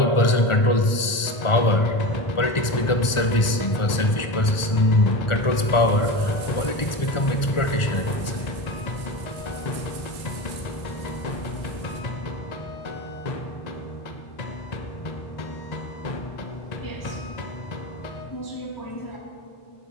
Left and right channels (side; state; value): right; late; 1.4 ms